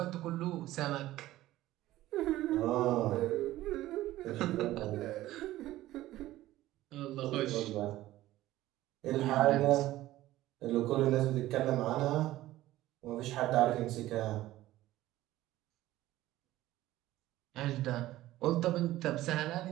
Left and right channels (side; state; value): left; quieter; 15.6 dB